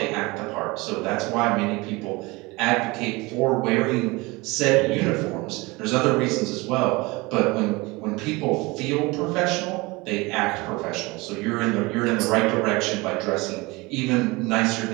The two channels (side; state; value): left; quieter; 23.7 dB